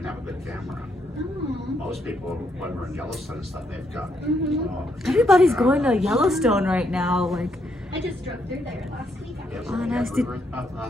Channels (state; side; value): normal; both; correlation 0.76